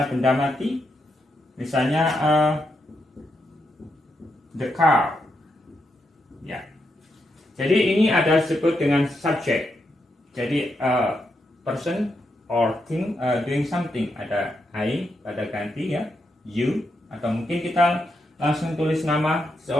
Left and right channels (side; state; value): both; normal; correlation 0.83